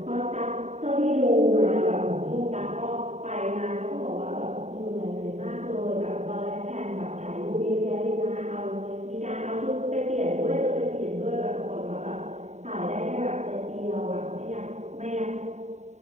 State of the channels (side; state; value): left; late; 0.33 ms